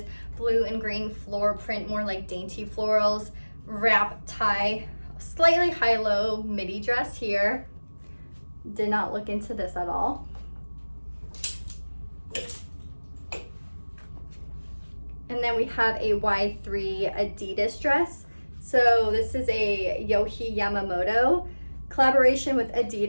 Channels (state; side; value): inverted; both; correlation -1.00